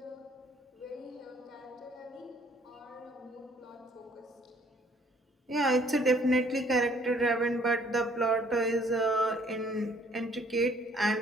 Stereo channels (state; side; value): normal; both; correlation 0.61